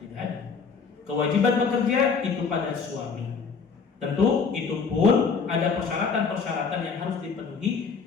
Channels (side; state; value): right; quieter; 5.4 dB